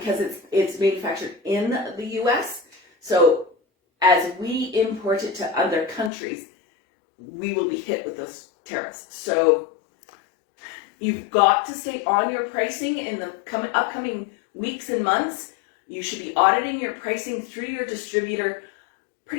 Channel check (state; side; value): drops out; right; at 6.1 s